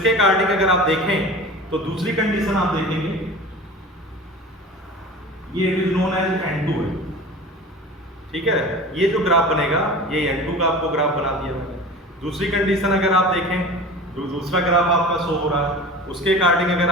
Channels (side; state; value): both; normal; correlation 0.36